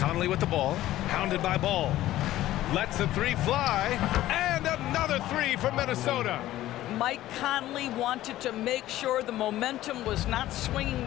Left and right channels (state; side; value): quieter; right; 14.7 dB